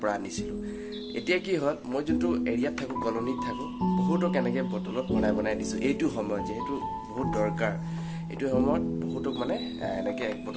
পৰা আনিছিলোঁ এতিয়া কি হ'ল মই যোনটো এৰিয়াত থাকোঁ কলনীত থাকোঁ বহুতক এনেকৈ বটলত বনাই দিছোঁ এইটো সময়ত যিহেতু বহুত দৰকাৰ এইটো সময়ত বহুতক মানে এনেকৈ এক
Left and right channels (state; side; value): identical; both; correlation 1.00